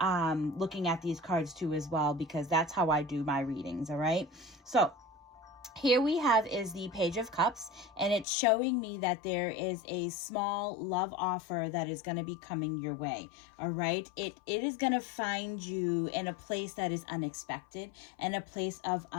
looking at these cards too as well, because that's how I do my readings. All right, so here we have is the Page of Cups, and it's showing me that there is a small love offer that is going to be coming your way. All right. It is going to find you in a place that is unexpected and a place of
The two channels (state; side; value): drops out; right; at 8.2 s